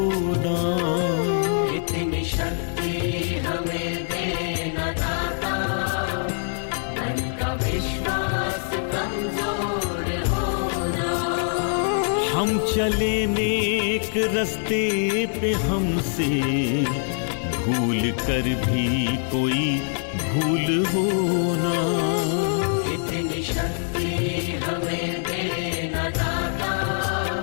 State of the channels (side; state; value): right; silent; digital silence